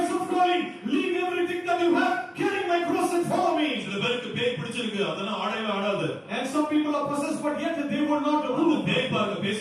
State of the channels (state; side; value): identical; both; correlation 1.00